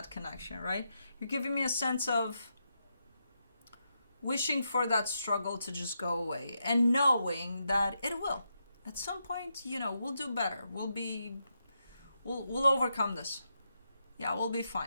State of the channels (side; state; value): both; inverted; correlation -0.83